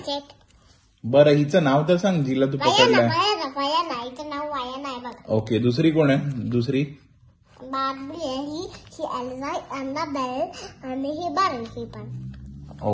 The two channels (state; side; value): identical; both; correlation 1.00